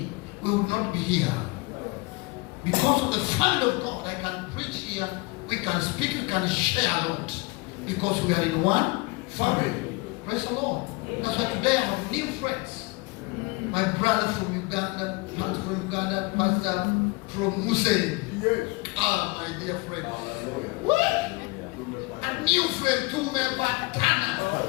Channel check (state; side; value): quieter; right; 25.4 dB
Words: we would not be here. Because of the family of God, I can preach here, we can speak, we can share a lot. Because we are in one family. Praise the Lord. That's why today I have new friends. My brother from Uganda, pastor from Uganda, pastor from Muse. Yes. Ah, my dear friend. What? A new friend tumepatana.